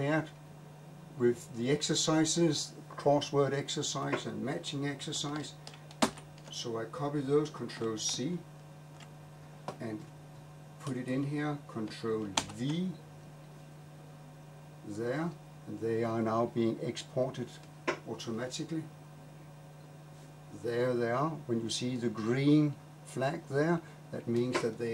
with the exercises, crossword exercise and matching exercise. So I copy those, Ctrl C, and put it in here, Ctrl V, there, and they are now being exported automatically. There they are. When you see the green flag there, that means that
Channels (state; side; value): identical; both; correlation 1.00